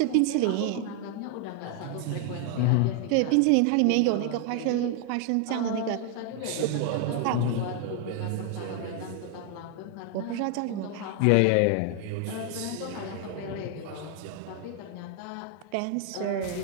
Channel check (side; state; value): both; different; correlation 0.00